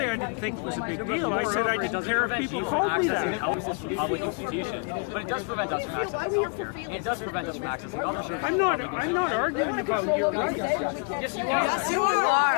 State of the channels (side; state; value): right; quieter; 38.5 dB